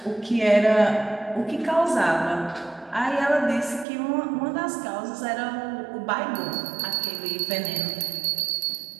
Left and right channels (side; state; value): left; drops out; at 3.9 s